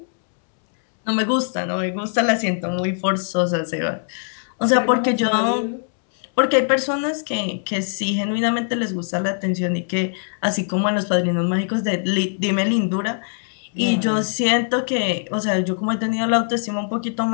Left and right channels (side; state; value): right; silent; 65 dB below the other